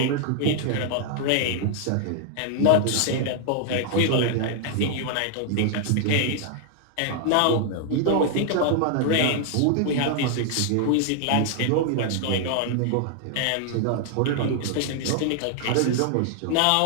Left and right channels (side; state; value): both; different; correlation 0.00